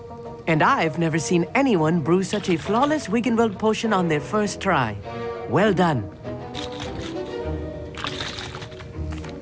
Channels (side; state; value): both; identical; correlation 1.00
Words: And I've never seen anyone brew such a flawless Wiggenweld potion on their first try. Well done.